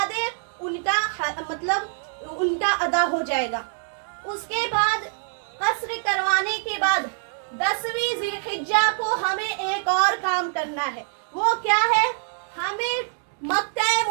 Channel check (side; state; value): left; silent; 62 dB below the other